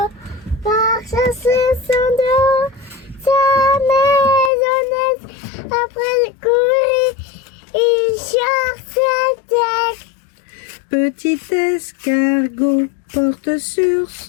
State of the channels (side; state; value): right; drops out; at 4.5 s